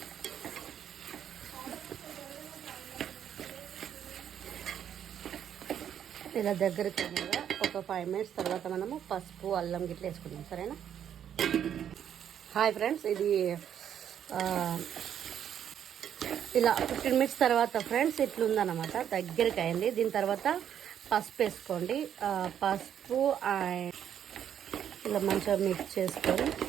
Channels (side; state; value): left; quieter; 9.3 dB